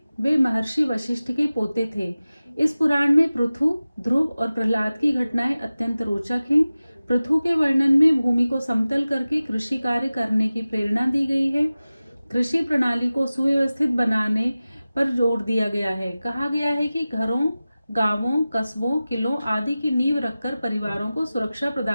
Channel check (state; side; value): inverted; both; correlation -0.96